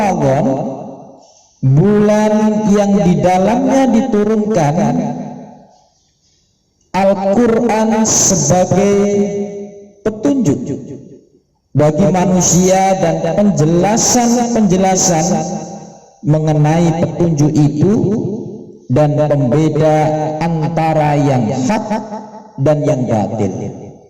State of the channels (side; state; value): both; identical; correlation 1.00